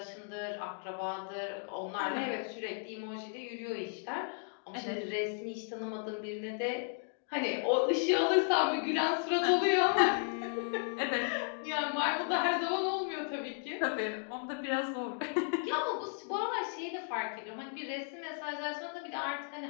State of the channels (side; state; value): right; silent; 55 dB below the other